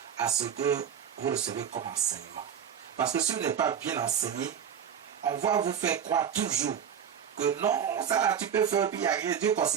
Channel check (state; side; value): quieter; left; 8.3 dB